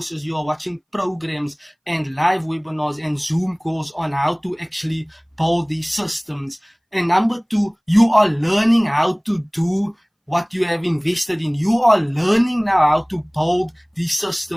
you are watching programs and live webinars and Zoom calls on how to actually build these systems. And number two, you are learning how to do what you have invested in. You are learning now how to build these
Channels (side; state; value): both; identical; correlation 1.00